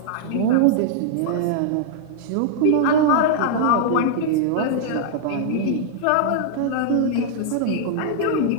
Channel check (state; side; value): different; both; correlation -0.01